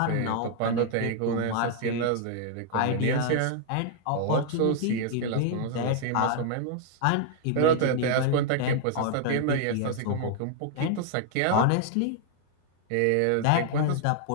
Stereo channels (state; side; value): different; both; correlation -0.01